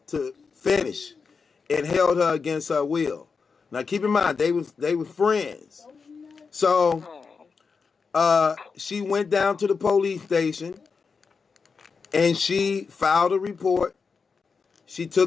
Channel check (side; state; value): right; quieter; 5.2 dB